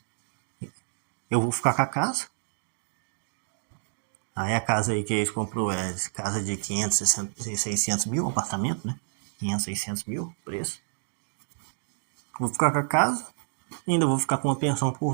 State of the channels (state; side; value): silent; left; digital silence